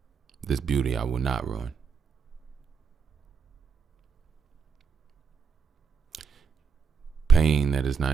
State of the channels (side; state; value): left; quieter; 5.9 dB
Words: This beauty I will not ruin. Pain that is